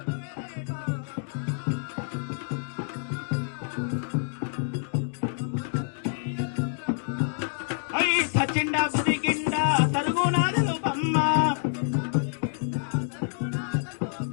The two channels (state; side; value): silent; right; digital silence